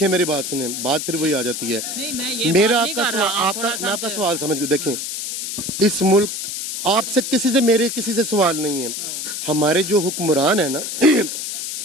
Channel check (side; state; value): left; noise; hiss, 5 dB below the sound